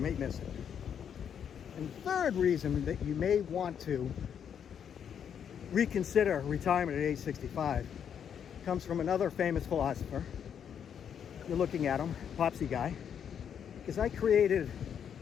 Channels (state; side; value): quieter; right; 8.2 dB